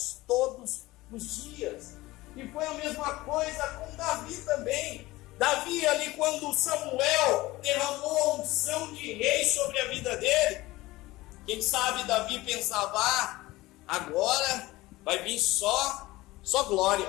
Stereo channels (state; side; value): quieter; right; 19.1 dB